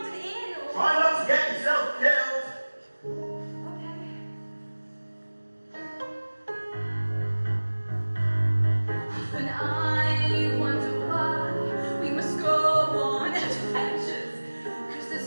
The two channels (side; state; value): both; inverted; correlation -1.00